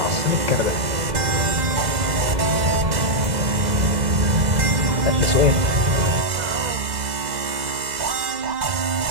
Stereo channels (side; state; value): left; late; 2.0 ms